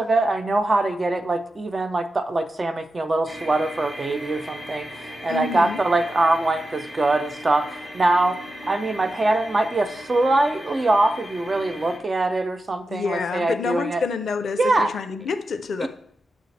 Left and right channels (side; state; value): both; normal; correlation 0.90